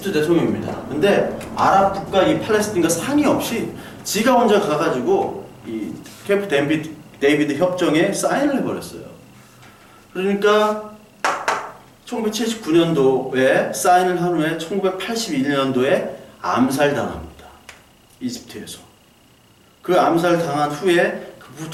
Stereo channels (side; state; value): both; identical; correlation 1.00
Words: 대통령입니다. 근데 아랍 국가 이 팔레스타인과 상의 없이 지가 혼자 가가지고 이 캠프 데이비드 협정에 사인을 해버렸어요. 그러니까 1979년도에 사인을 한 후에 1981년도에 암살당합니다. 이집트에서. 그 암살당한 후에 그